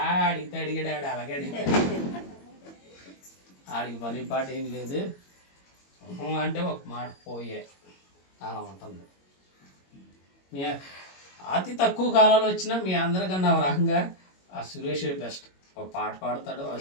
అడిగాడు అలాగే అడిగాడు. ఆడికి పని పాట ఏం లేదు అంటే ఒక మాట పోయే అలా ఉంటుంది. మీ అతి తక్కువ కాలంలో వచ్చినా మీ అందరికన్నా ఒక రకంగా ఆ సురేష్ బెస్ట్. ఒక పాట పాడతాడు, ఒక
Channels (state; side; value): late; right; 22 ms